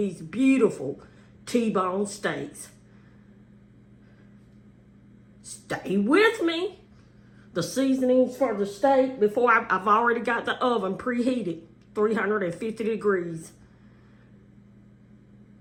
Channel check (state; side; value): identical; both; correlation 1.00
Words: beautiful T-bone steaks. Stay with me. The seasonings for the steak, before I've already got the oven preheated, 350 degrees.